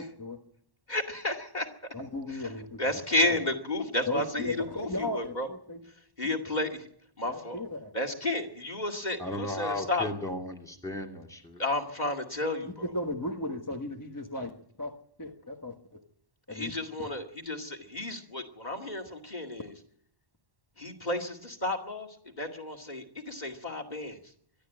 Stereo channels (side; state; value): left; late; 1.1 ms